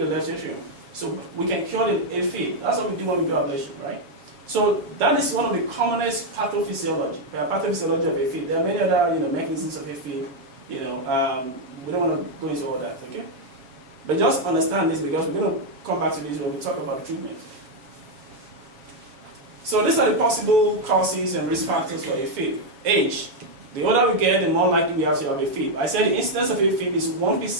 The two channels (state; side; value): late; left; 7.3 ms